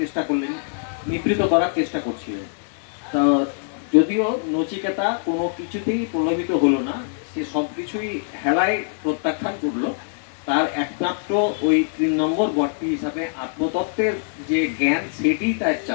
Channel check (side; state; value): right; silent; digital silence